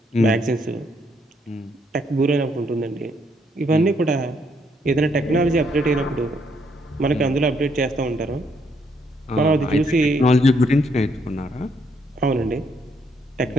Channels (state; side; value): normal; both; correlation 0.72